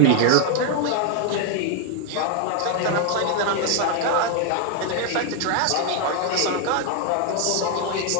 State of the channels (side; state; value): both; different; correlation 0.00